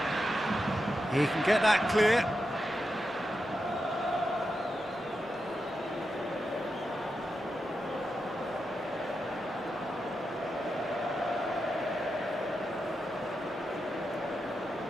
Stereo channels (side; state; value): both; normal; correlation 0.88